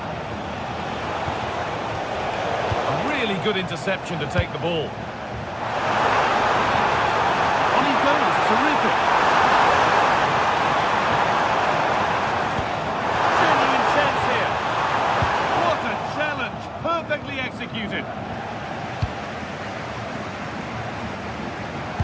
Really good interception to take the ball. On he goes, terrific. Genuine chance here. What a challenge, perfectly executed.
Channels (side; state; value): both; identical; correlation 1.00